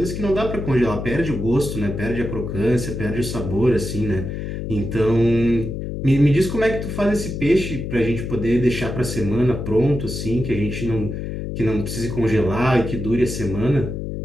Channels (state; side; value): noise; left; hum, 5 dB below the sound